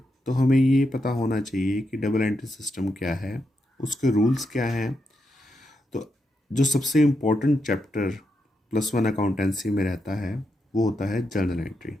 तो हमें ये पता होना चाहिए कि डबल एंट्री सिस्टम क्या है, उसके रूल्स क्या हैं। तो जो सबसे इम्पोर्टेंट चैप्टर +1 अकाउंटेंसी में रहता है वो होता है जर्नल एंट्री।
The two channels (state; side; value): normal; both; correlation 0.84